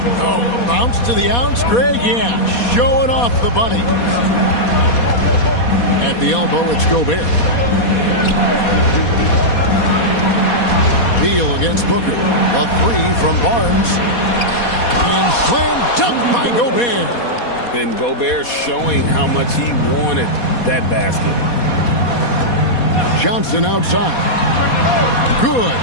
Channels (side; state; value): right; late; 4.2 ms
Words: Oh, a bounce to the ounce, Greg? Yeah, showing off the bunny. At the elbow, it's Gobert. Beal against Booker. A three from Barnes. And slam dunk by Gobert. And Gobert showing how much he wanted that basket. Johnson outside. Good.